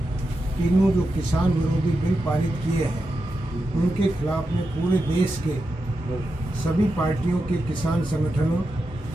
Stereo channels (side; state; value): both; normal; correlation 0.88